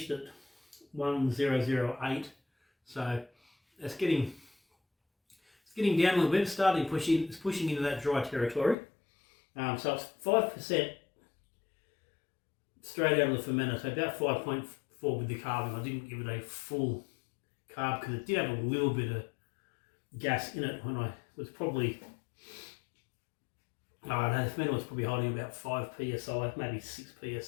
at 1008. So it's getting down a little bit. It's pushing into that dry territory. So it's 5% straight out of the fermenter, so about 5.4 with the carving. I didn't give it a full carb because it did have a little bit of gas in it when I was probably, the fermenter was probably holding about 5 psi, maybe 6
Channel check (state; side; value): drops out; right; at 8.8 s